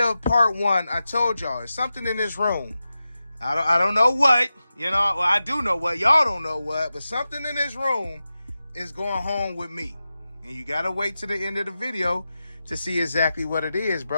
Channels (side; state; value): both; inverted; correlation -0.93